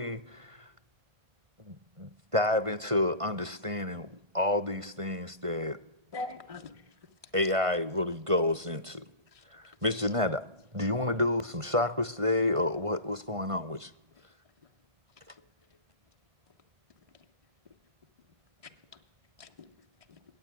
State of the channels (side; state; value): left; late; 1.5 ms